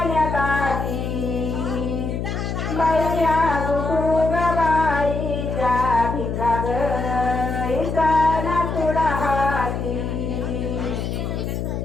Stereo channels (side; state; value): left; noise; hum, 3 dB below the sound